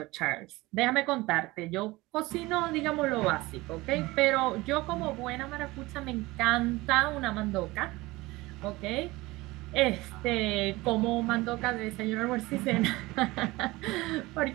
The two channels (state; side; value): quieter; left; 20.7 dB